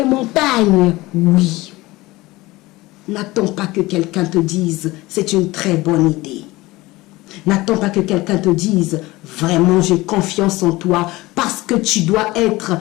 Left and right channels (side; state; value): right; quieter; 20.0 dB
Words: montagnes. Oui. N'attends pas que quelqu'un te dise « c'est une très bonne idée ». N'attends pas que quelqu'un te dise « vraiment j'ai confiance en toi » parce que tu dois être